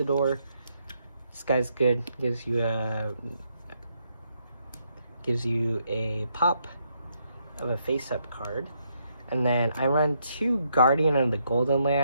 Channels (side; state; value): both; inverted; correlation -0.76